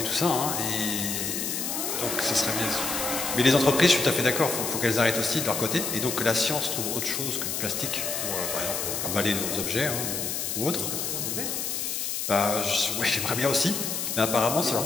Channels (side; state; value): left; noise; hiss, 2 dB below the sound